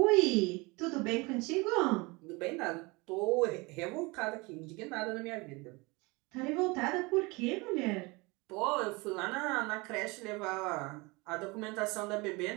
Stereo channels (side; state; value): left; quieter; 25.6 dB